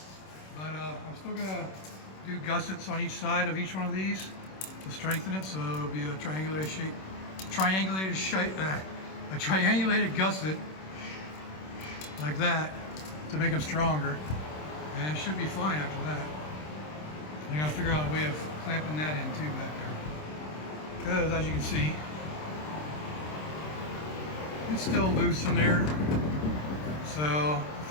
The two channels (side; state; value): right; late; 26 ms